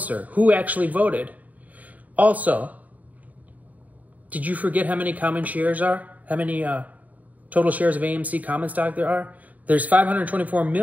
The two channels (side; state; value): left; late; 0.074 ms